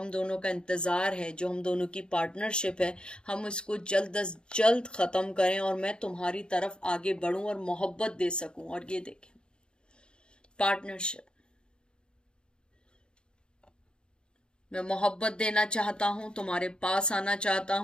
दोनों का इंतज़ार है, जो हम दोनों की पार्टनरशिप है, हम इसको जल्द अज जल्द ख़त्म करें और मैं तुम्हारी तरफ आगे बढ़ूँ और मोहब्बत दे सकूँ। और ये देखें, पार्टनरशिप, मैं मोहब्बत देना चाहता हूँ, तुम्हारे पास आना चाहता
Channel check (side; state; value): right; late; 0.051 ms